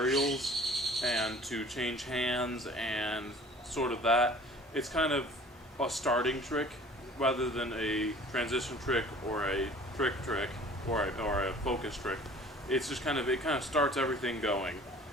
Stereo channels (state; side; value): normal; both; correlation 0.48